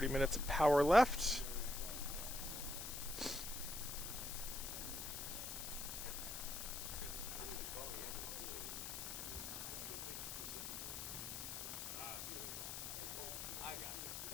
minutes of power left.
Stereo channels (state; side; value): noise; left; hiss, 5 dB below the sound